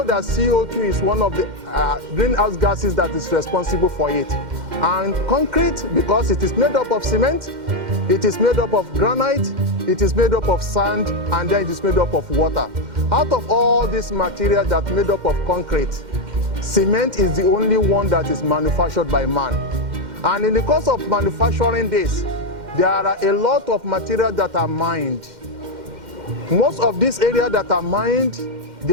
that CO2 is one of the greenhouse gases that is responsible for it. And concrete, because it is made up of cement, it is made up of granite, it is made up of sand, and then it is made up of water. Out of all this material that made up of concrete, cement is the only one that is manufactured by man. And in the course of manufacturing this, there are a lot of material that are mined. Most of these areas that are mined,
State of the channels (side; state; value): left; late; 2.1 ms